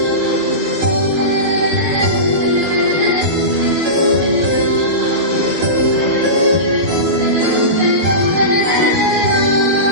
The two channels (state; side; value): late; left; 12 ms